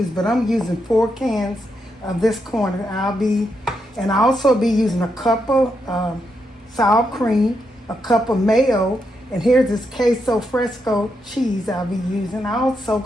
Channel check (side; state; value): both; normal; correlation 0.82